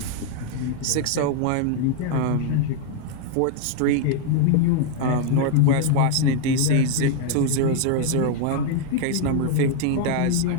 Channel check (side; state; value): both; different; correlation 0.00